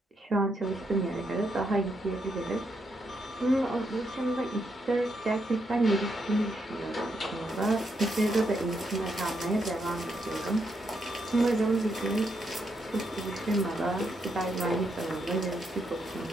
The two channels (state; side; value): normal; both; correlation 0.79